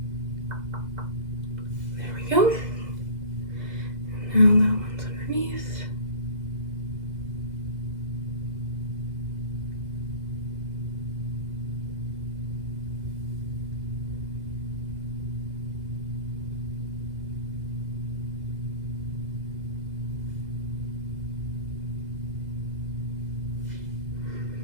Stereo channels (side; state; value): left; late; 2.0 ms